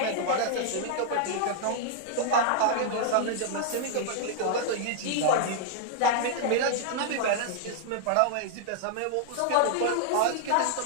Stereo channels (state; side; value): different; both; correlation -0.01